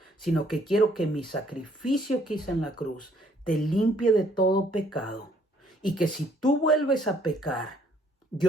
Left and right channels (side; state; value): both; normal; correlation 0.64